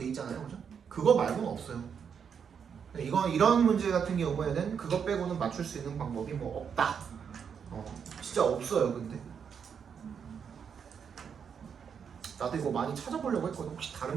있잖아요, 그죠? 그거 말고는 없어요. 이건 이런 문제 같은 경우에는 그거 빼고는 맞출 수 있는 방법이 뭐 없다. 진짜 없어요, 근데. 나도 이거 많이 찾아보려고 했거든. 혹시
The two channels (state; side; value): quieter; left; 7.1 dB